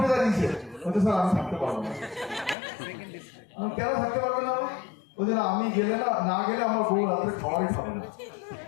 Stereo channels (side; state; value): right; drops out; at 2.6 s